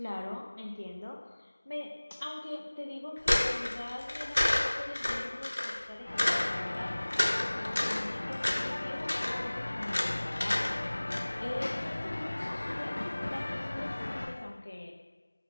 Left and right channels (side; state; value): both; inverted; correlation -1.00